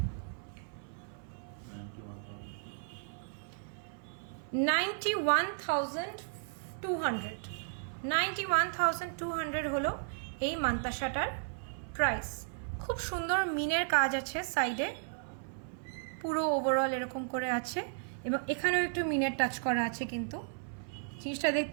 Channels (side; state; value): left; silent; 55 dB below the other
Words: 91,200। 91,200 হলো এই মান্তাসাটার প্রাইস। খুব সুন্দর মিনের কাজ আছে সাইডে, পুরো ওভারঅল এরকম করে আছে এবং এখানেও একটু মিনের টাচ করা আছে। কিন্তু জিনিসটা